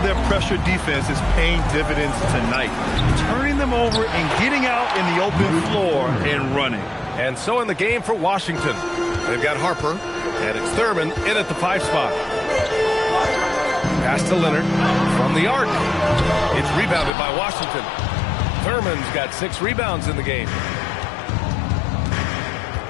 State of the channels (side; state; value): right; drops out; at 17.1 s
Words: pressure defense is paying dividends tonight, turning them over and getting out in the open floor and running. And so in the game for Washington, they've got Harper, and it's Thurman in at the 5 spot. Pass to Leonard from the arc. It's rebounded by Washington. Thurman's got 6 rebounds in the game.